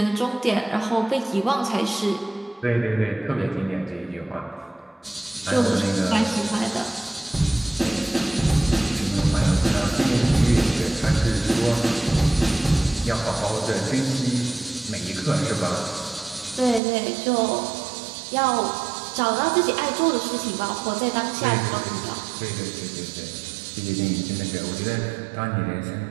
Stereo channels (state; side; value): drops out; left; at 16.8 s